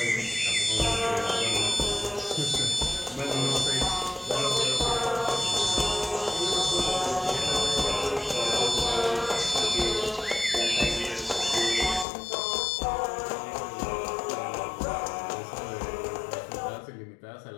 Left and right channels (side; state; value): right; drops out; at 12.1 s